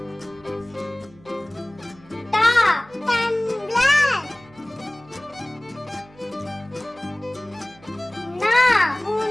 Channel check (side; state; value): right; noise; hum, 25 dB below the sound